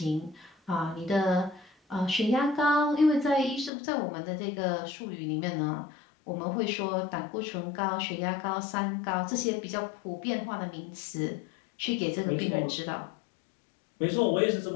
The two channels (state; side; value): drops out; right; at 3.7 s